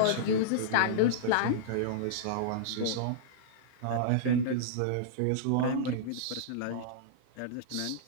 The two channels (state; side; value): different; both; correlation -0.02